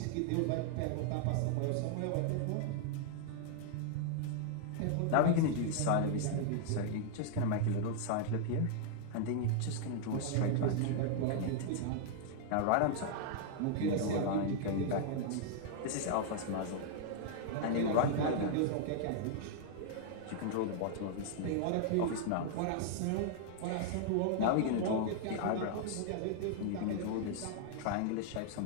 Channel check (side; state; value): both; different; correlation -0.01